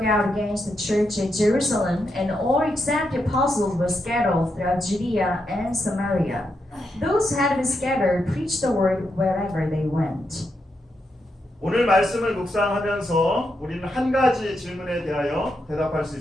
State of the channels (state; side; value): normal; both; correlation 0.83